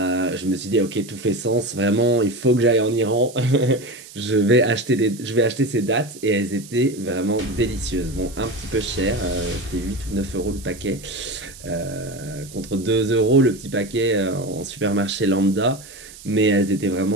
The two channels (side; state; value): right; noise; hiss, 18 dB below the sound